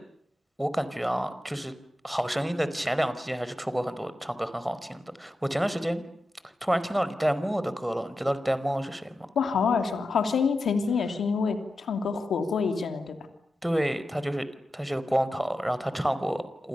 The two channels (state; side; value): normal; both; correlation 0.91